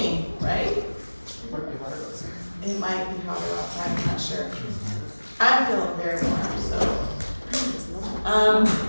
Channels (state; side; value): inverted; both; correlation -1.00